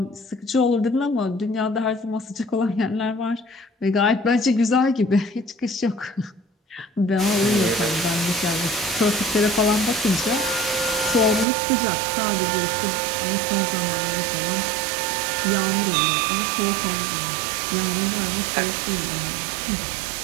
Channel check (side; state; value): left; drops out; at 11.5 s